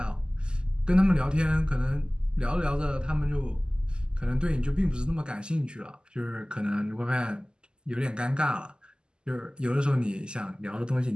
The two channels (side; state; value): left; late; 0.047 ms